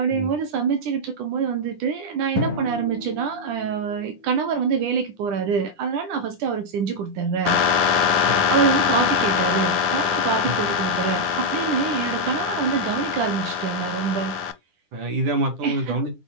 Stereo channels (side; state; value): left; late; 9.9 ms